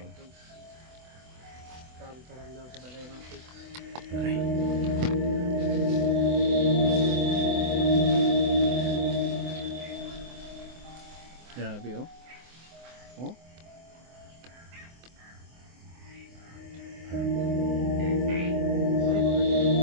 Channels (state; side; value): late; left; 24 ms